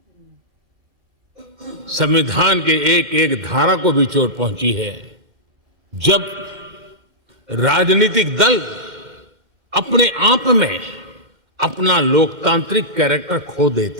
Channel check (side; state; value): left; late; 2.1 ms